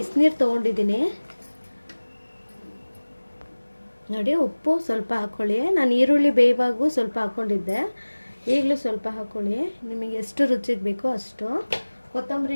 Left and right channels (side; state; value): both; inverted; correlation -1.00